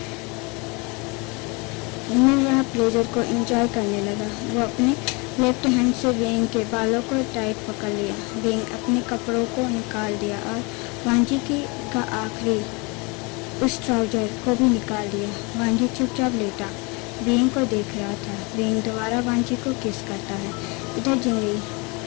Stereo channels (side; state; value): right; quieter; 29.1 dB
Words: मिल रहा प्लेजर को एंजॉय करने लगा। वो अपने लेफ्ट हैंड से बीइंग के बालों को टाइट पकड़ लिया। बीइंग अपने कपड़ों को निकाल दिया और वांजी का आखिरी उस ट्राउजर को भी निकाल दिया। वांजी चुपचाप लेटा बीइंग को देख रहा था। बीइंग दोबारा वांजी को किस करता है। इधर जिंगई